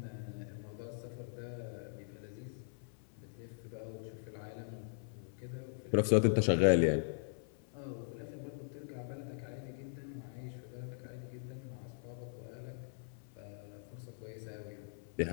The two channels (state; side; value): silent; right; 51 dB below the other